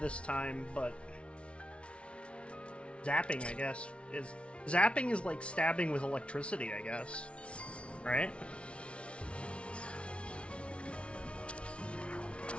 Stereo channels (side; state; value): right; late; 0.060 ms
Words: time, but zapping, I guess, is... Zapping is like stabbing with electricity, I guess. Right?